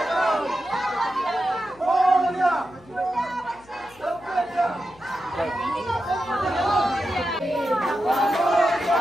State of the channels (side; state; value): left; noise; hum, 26 dB below the sound